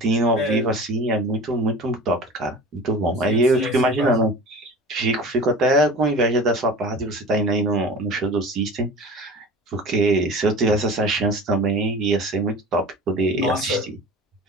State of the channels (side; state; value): both; normal; correlation 0.37